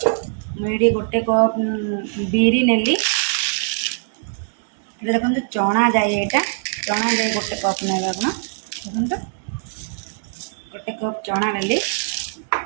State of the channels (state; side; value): silent; left; digital silence